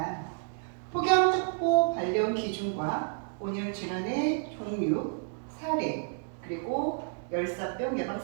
폭염 특보 발령 기준과 온열 질환의 종류, 사례, 그리고 열사병 예방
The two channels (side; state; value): left; silent; digital silence